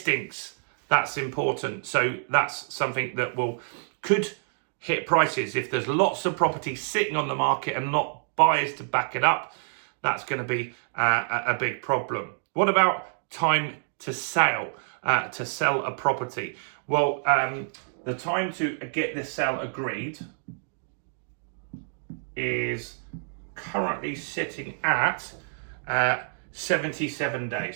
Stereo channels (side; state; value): left; silent; digital silence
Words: that's important. So that's something that could hit prices. If there's lots of property sitting on the market and not buyers to back it up, that's going to be a big problem. What about time to sell a property? Well, the time to get this sale agreed is currently sitting at 77